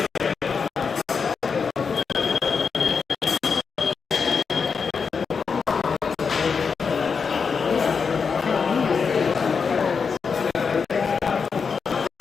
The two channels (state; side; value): quieter; right; 5.6 dB